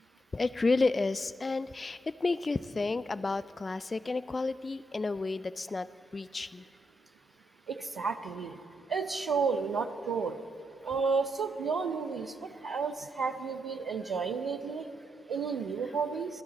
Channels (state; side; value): normal; both; correlation 0.79